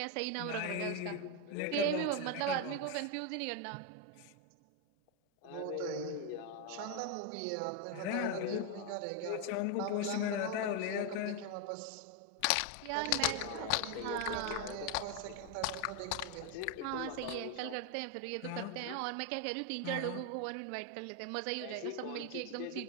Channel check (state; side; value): different; both; correlation 0.01